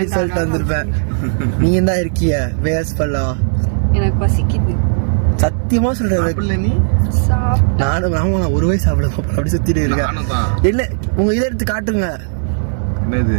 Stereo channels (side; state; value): left; silent; digital silence